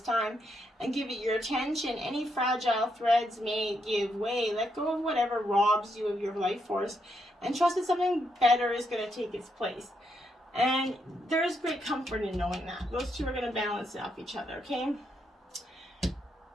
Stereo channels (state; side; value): normal; both; correlation 0.79